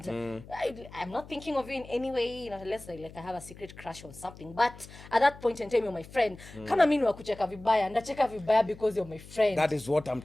I'm not thinking of you in any way, unless like I have a secret crush on something. But at that point in time, you're my friend. Kama mimi wakucheka vibaya, ndacheka vibaya because you're my friend. That is what I'm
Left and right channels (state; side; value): noise; left; hum, 18 dB below the sound